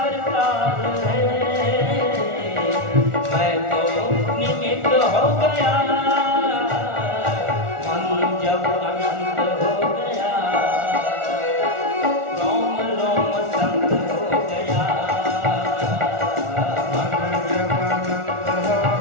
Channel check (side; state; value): left; late; 1.4 ms